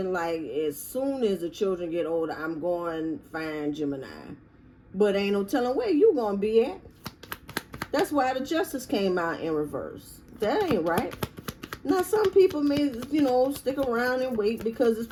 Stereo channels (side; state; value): both; identical; correlation 1.00